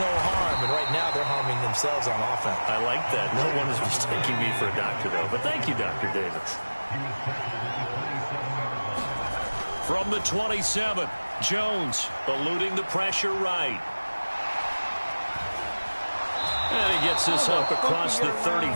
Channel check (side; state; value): both; inverted; correlation -1.00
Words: harm. And right now, they're harming themselves on offense. I like that. No one is mistaking me for a doctor, though. But thank you, Dr. Davis. From the 27, Jones eluding the pressure right. And he gets this up across the